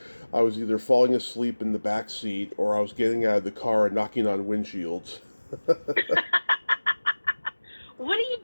I was either falling asleep in the back seat or I was getting out of the car and knocking on windshields. What are you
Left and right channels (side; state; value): both; inverted; correlation -1.00